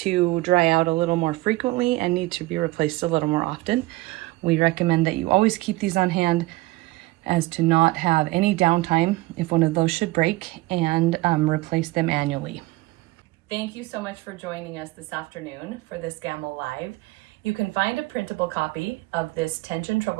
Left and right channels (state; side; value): quieter; left; 19.8 dB